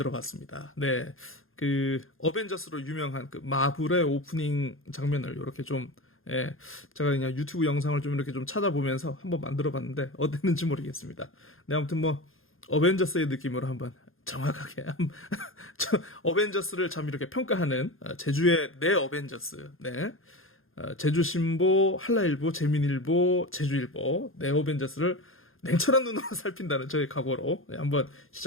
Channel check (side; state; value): right; late; 0.60 ms